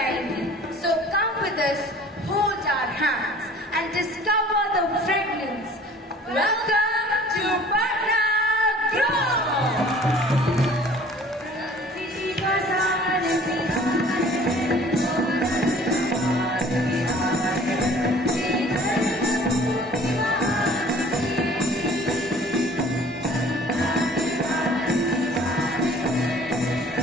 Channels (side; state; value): both; normal; correlation 0.49